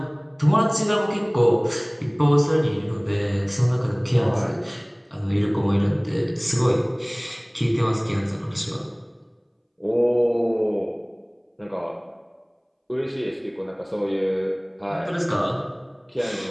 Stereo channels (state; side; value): identical; both; correlation 1.00